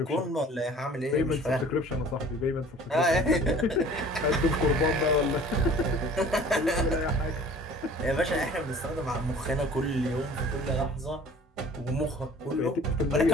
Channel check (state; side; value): normal; both; correlation 0.48